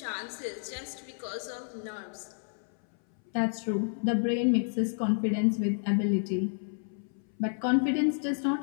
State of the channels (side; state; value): right; silent; 57 dB below the other